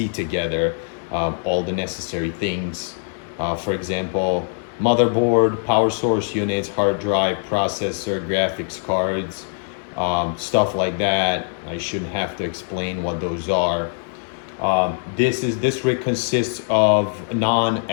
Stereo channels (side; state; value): right; silent; 64 dB below the other